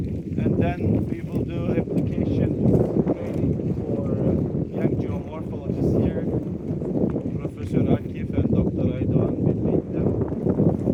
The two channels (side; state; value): both; identical; correlation 1.00